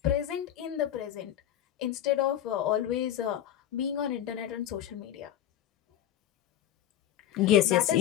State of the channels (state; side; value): quieter; right; 11.1 dB